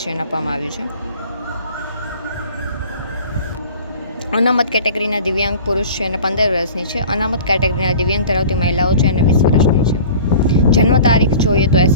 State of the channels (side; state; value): both; inverted; correlation -0.43